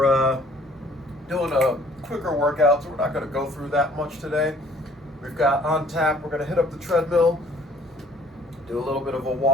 doing a quicker workout, so we're not going to go through that much today. We've got on tap, we're going to hit up the treadmill, do a little bit of a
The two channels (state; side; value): normal; both; correlation 0.56